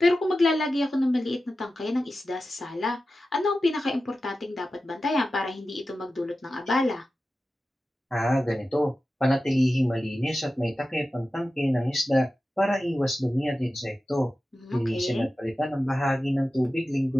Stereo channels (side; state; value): both; normal; correlation 0.93